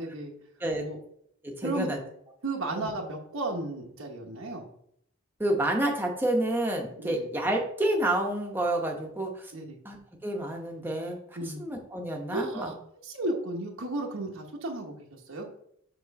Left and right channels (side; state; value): both; normal; correlation 0.54